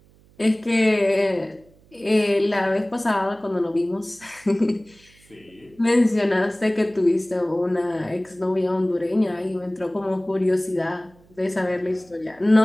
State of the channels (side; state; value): right; noise; hum, 29 dB below the sound